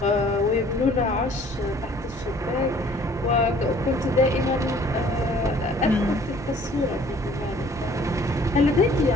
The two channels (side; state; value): both; normal; correlation 0.55